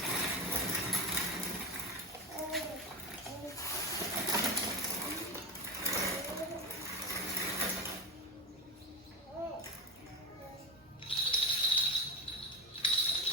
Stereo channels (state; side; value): normal; both; correlation 0.20